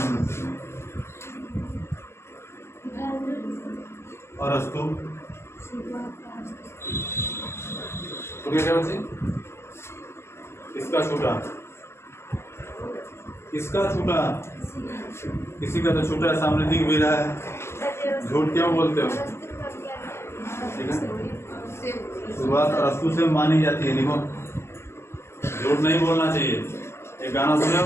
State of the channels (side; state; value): right; late; 0.12 ms